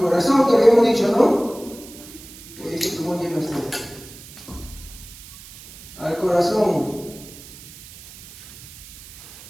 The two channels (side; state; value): right; noise; hiss, 17 dB below the sound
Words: que habíamos dicho, ¿no? ¿Cómo lleva esto? Al corazón,